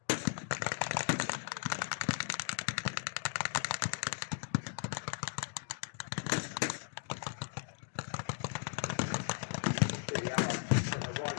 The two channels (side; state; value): right; silent; digital silence